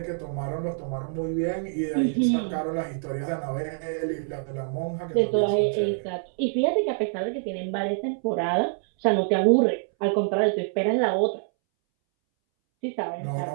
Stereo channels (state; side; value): silent; left; 61 dB below the other